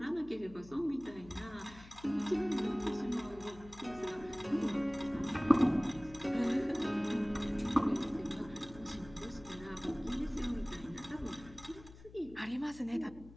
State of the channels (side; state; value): left; noise; hum, 19 dB below the sound